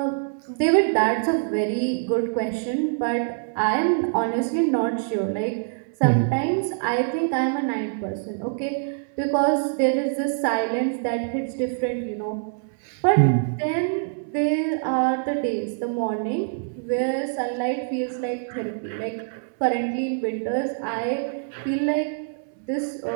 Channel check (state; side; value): silent; left; 62 dB below the other